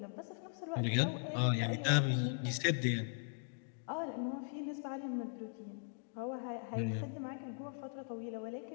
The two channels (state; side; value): silent; right; digital silence